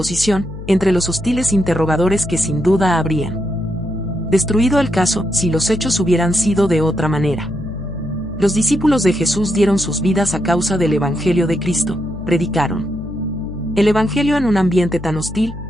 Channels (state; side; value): noise; left; hum, 11 dB below the sound